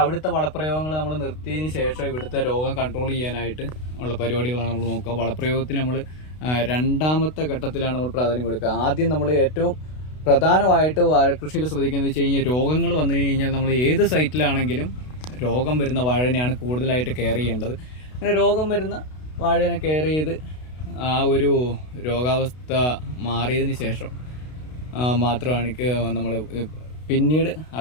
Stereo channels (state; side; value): late; right; 32 ms